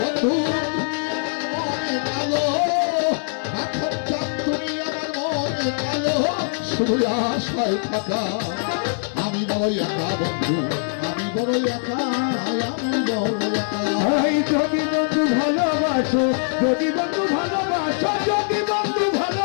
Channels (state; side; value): silent; right; 64 dB below the other